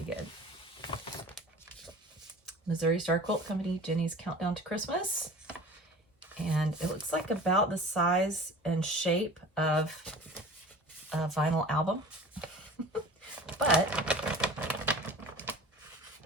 good. Missouri Star Quilt Company, Jenny's Countdown to Christmas. And it looks like about the size and shape of a vinyl album. But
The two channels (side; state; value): both; normal; correlation 0.41